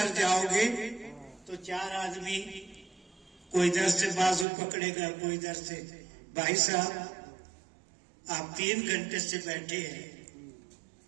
जाओगे तो 4 आदमी, कोई इधर से बाजू पकड़ेगा, कोई इधर से। भाई साहब, आप 3 घंटे से बैठे हैं,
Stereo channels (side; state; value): left; drops out; at 4.5 s